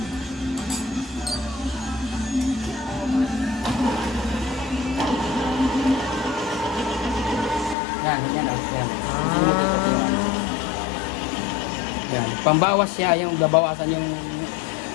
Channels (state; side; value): drops out; right; at 7.8 s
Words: Yan. Yan. Pambawas siya, yung babawasan yung